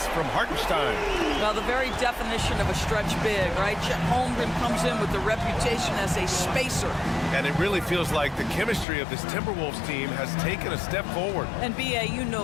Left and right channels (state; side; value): drops out; right; at 8.8 s